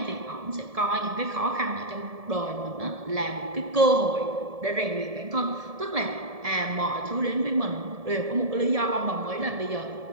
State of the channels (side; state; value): left; late; 1.7 ms